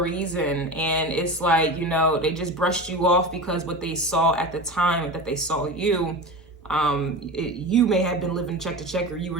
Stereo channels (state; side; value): normal; both; correlation 0.28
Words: reason. And it's like, you know, they just brushed you off because what they saw at the time that they saw you, you may have been living check to check, or you